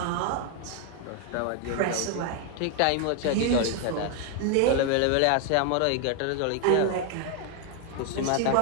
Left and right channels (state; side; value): different; both; correlation 0.01